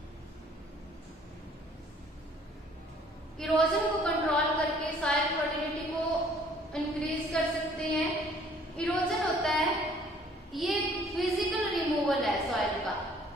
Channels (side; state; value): both; normal; correlation 0.58